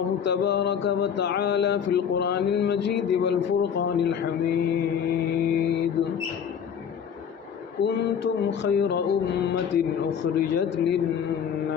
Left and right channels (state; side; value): quieter; right; 7.8 dB